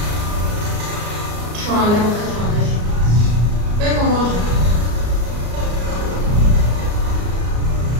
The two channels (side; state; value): left; late; 34 ms